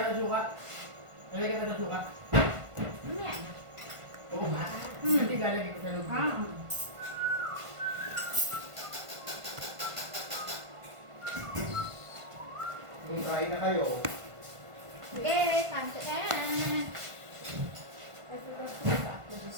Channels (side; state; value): left; late; 1.5 ms